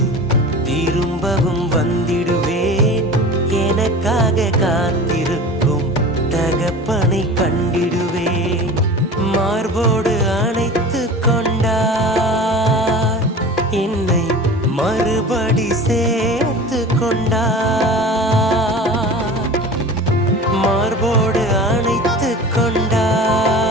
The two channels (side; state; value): both; normal; correlation 0.36